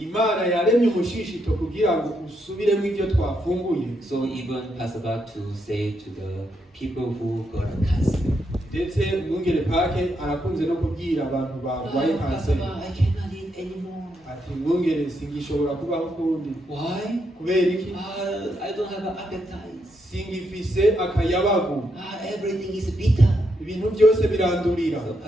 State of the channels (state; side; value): normal; both; correlation 0.80